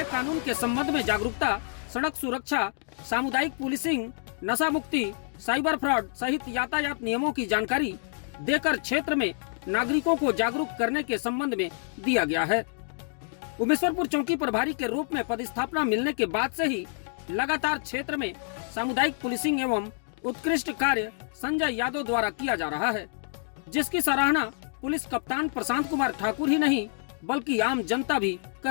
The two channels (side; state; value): right; silent; 59 dB below the other